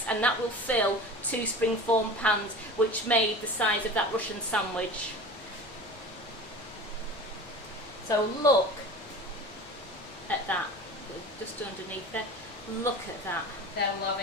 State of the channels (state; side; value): normal; both; correlation 0.35